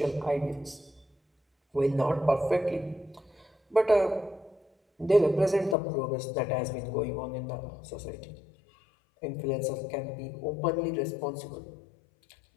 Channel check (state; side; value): drops out; right; at 5.8 s